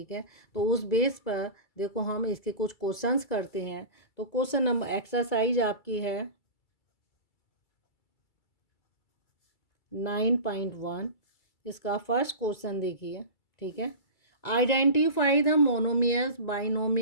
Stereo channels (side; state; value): right; late; 2.3 ms